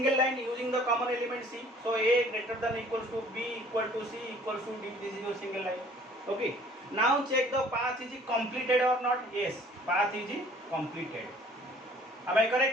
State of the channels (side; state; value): both; normal; correlation 0.54